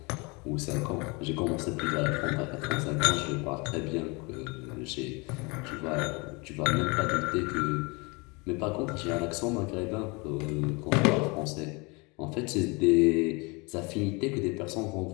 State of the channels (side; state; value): right; quieter; 28.2 dB